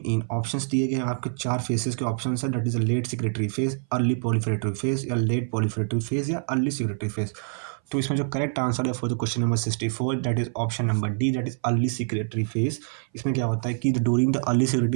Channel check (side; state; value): left; silent; 60 dB below the other